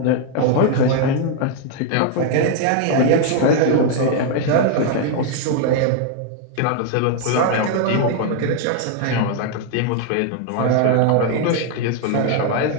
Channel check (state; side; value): different; both; correlation 0.00